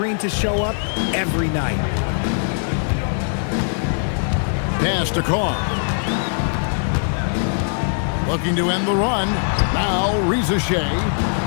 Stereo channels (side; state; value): right; silent; digital silence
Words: to show up every night. Pass to Carr. Looking to end the run. Now Rizzo.